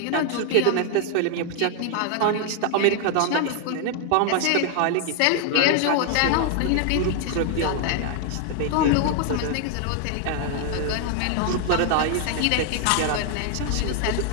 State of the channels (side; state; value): both; different; correlation 0.00